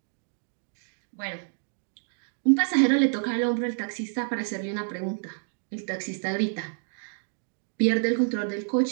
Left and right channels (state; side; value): silent; left; digital silence